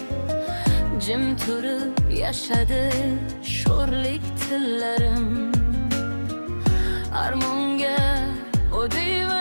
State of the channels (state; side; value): inverted; both; correlation -1.00